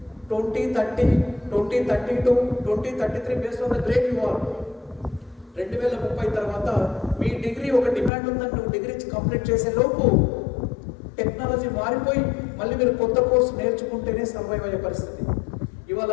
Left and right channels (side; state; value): right; drops out; at 8.1 s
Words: 2030, 2032, 2033 based on the grade you are. 2030 తర్వాత మీ డిగ్రీ ఒక డిమాండ్ ఉందని నువ్వు డిగ్రీ కంప్లీట్ చేసే లోపు టెక్నాలజీ మారిపోయి మళ్ళీ మీరు కొత్త కోర్సు నేర్చుకుంటేనే సర్వైవ్ అయ్యే పరిస్థితి. ఇవాళ